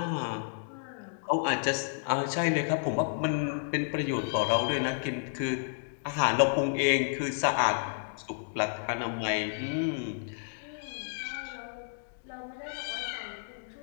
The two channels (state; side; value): silent; right; digital silence